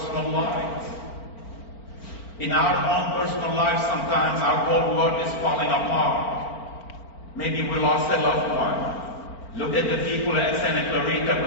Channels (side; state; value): right; late; 4.4 ms